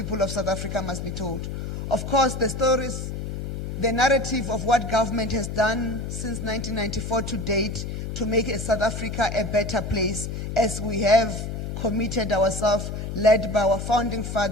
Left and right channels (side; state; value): left; noise; hum, 5 dB below the sound